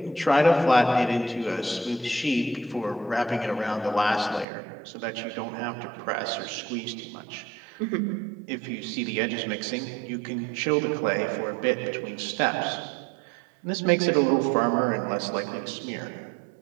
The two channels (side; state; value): left; drops out; at 4.5 s